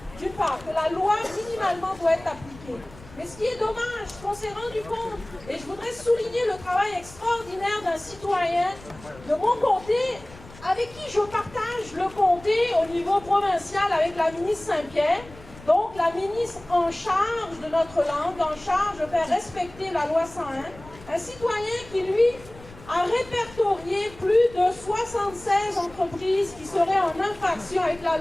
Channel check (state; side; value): noise; left; rumble, 20 dB below the sound